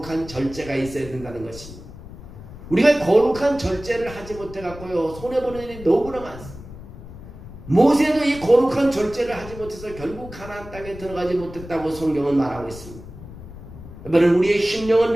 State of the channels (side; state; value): left; noise; rumble, 15 dB below the sound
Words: 절제가 있어야 된다는 것입니다. 우리가 거룩한 절제를 하지 못해갖고요, 손해보는 일이 너무나 많습니다. 모세도 이 거룩한 절제를 하지 못해서 결국 가나안 땅에 들어가지 못했다고 성경은 말하고 있습니다. 여러분, 우리의 심령을